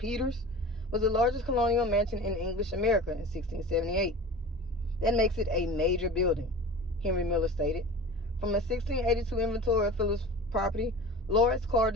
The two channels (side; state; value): both; normal; correlation 0.36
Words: was the largest colonial mansion in English America in 1678. That makes it a major building, Henry Miller stated. From a 1682 inventory of Philip's property, Lawrence Carr